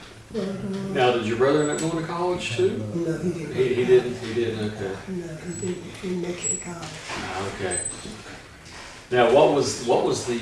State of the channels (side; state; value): both; identical; correlation 1.00